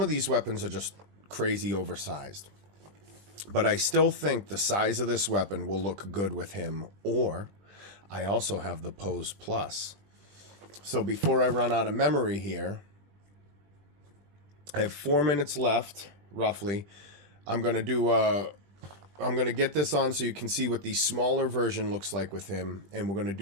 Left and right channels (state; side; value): late; left; 20 ms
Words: of these weapons are just crazy oversized. But I still think the size of this weapon will look good with him. Or I also have the Pose Plus. So before I run out of memory here, I have 4 minutes left, roughly. I'm going to get this on so you can see what the smaller version looks like with him. And we're going to